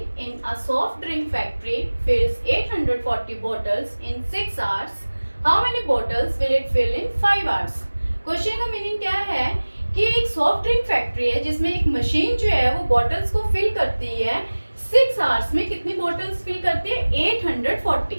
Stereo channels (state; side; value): inverted; both; correlation -1.00